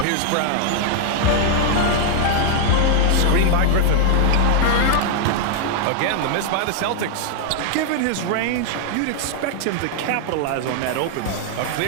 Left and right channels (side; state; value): both; different; correlation 0.00